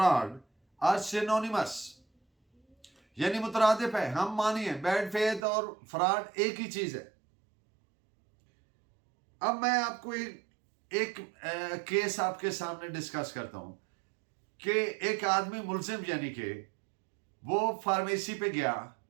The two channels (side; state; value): left; drops out; at 5.4 s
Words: are synonymous, यानी मुतरादिफ है, हम मानिए बैड फेथ और फ्रॉड एक ही चीज है। अब मैं आपको एक केस आपके सामने डिस्कस करता हूं कि एक आदमी मुल्जिम, यानी कि वो फार्मेसी पे गया,